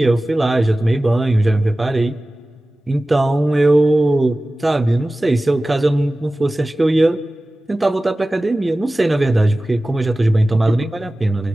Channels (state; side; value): normal; both; correlation 0.97